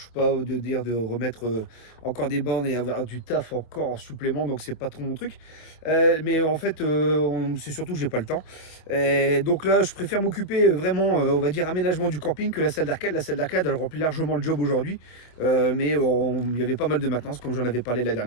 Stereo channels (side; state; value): right; late; 25 ms